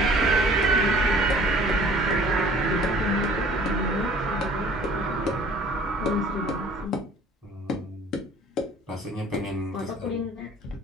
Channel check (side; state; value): both; normal; correlation 0.51